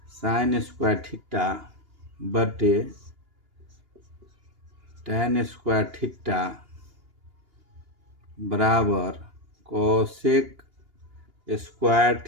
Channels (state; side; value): late; left; 2.8 ms